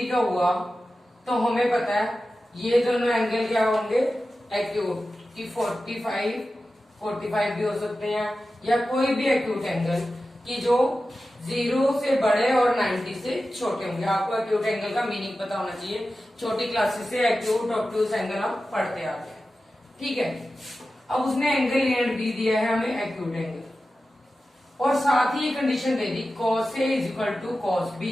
का हुआ तो हमें पता है ये दोनों एंगल क्या होंगे, एक्यूट। कि 45 भी हो सकते हैं या कोई भी एक्यूट एंगल कि जो 0 से बड़े और 90 से छोटे होंगे। आपको एक्यूट एंगल का मीनिंग पता होना चाहिए। छोटी क्लासेस से एक्यूट ऑब्ट्यूज एंगल हम पढ़ते आते हैं, ठीक है। अब उसने एंगल ए एंड बी दिया है हमें, एक्यूट एंगल, और साथ ही ये कंडीशन दे दी cos A is equal to cos B।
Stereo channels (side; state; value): both; normal; correlation 0.94